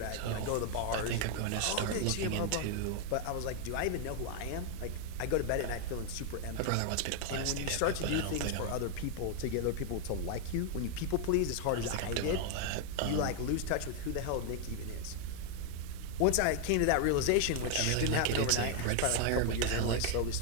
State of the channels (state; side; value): different; both; correlation 0.00